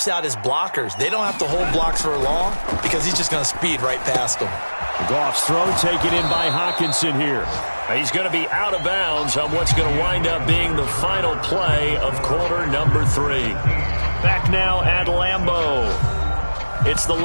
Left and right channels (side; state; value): both; inverted; correlation -1.00